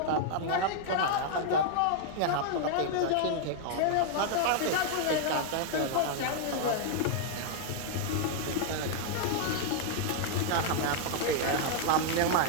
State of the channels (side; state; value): both; different; correlation -0.01